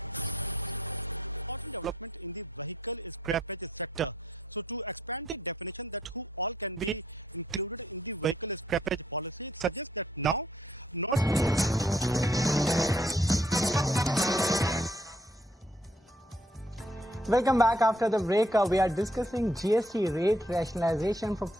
important development in the vehicle scrappage sector. So to expand the definition that who all can be included in the vehicle scrappage policy, it suggests that now not Welcome back after the break. We are discussing GST rate rationalization from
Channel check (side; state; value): both; normal; correlation 0.68